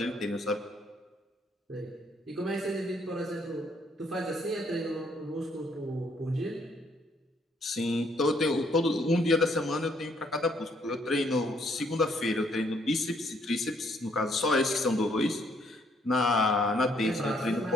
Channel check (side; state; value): both; normal; correlation 0.69